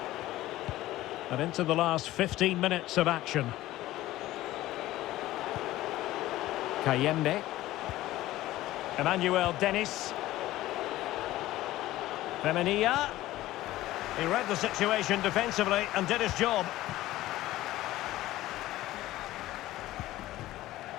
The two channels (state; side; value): quieter; right; 16.0 dB